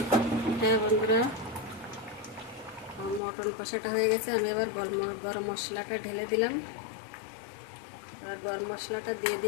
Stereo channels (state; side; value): drops out; right; at 3.2 s